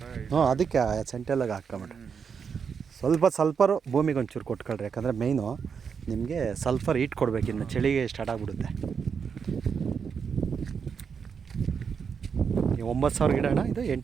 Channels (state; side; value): quieter; left; 6.4 dB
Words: ಹ್ಞೂ, ಅದಕ್ಕೆ ಸೆಂಟೆಲ್ಲಾಗ ಹಾಕ್ಕೊಂಬಿಡ್ರಿ. ಸಲ್ಫರು ಭೂಮಿಗೆ ಒಂಚೂರು ಕೊಟ್ಕೊಳ್ರಿ. ಯಾಕಂದರೆ ಮೇಯ್ನು ನಿಮಗೆ ಸಲ್ಫರ್ ಹೀಟ್ ಕೊಡಬೇಕು. ಇನ್ನು ಚಳಿಗೆ ಸ್ಟಾರ್ಟ್ ಆಗಿಬಿಡುತ್ತೆ. 9,000 ಗಿಡ ಅಣ್ಣ, ಇದು